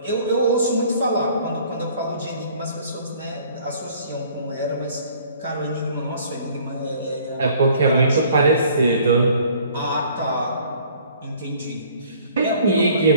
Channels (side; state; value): both; inverted; correlation -0.55